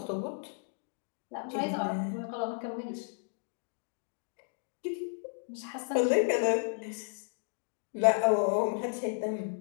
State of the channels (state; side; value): silent; right; digital silence